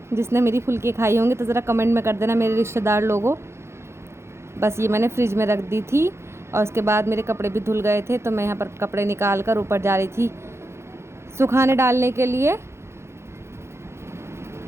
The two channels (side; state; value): left; late; 0.13 ms